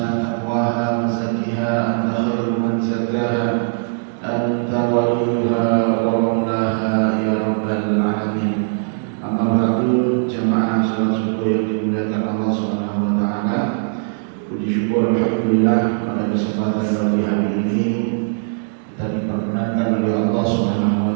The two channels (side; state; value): left; silent; digital silence